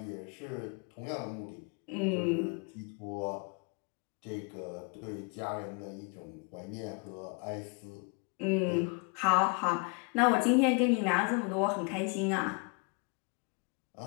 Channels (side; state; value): right; quieter; 34.7 dB